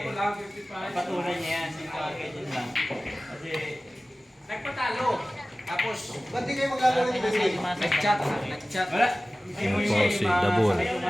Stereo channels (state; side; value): normal; both; correlation 0.97